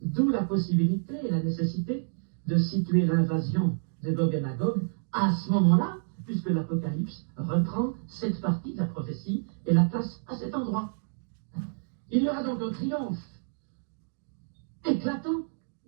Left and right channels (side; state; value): left; silent; digital silence